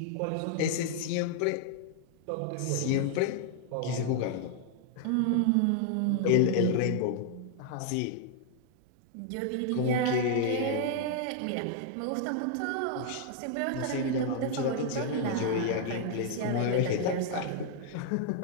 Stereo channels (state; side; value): different; both; correlation 0.00